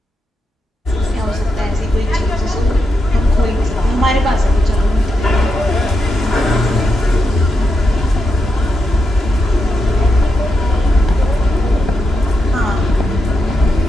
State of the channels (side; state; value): both; normal; correlation 0.85